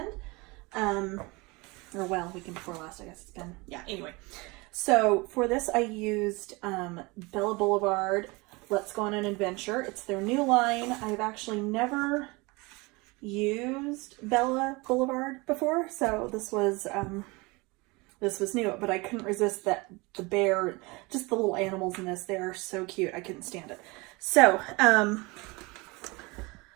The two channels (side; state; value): left; quieter; 25.3 dB